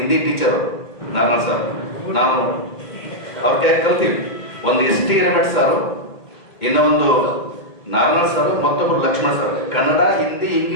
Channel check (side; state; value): right; late; 2.2 ms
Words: ಟೀಚರು ನಾರಾಯಣ ಸರ್, ನಾನು ಅವ್ರ ಕೈ ಕಲ್ತೀವಿ. ಒಂದು ST ರೇಮಠ್ ಸಾರು, ಇನ್ನೊಂದು ನಾರಾಯಣ ಸರ್, ಮತ್ತೊಬ್ಬರು ಲಕ್ಷ್ಮಣ ಸರ್. ಕನ್ನಡ, ಹಿಂದಿ,